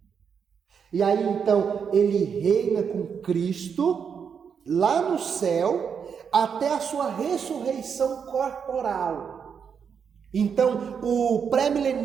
E aí então ele reina com Cristo lá no céu até a sua ressurreição corporal. Então o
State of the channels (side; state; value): left; quieter; 6.9 dB